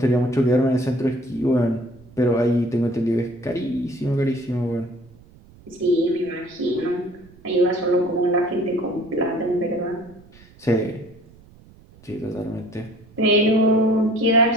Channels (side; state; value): right; noise; rumble, 25 dB below the sound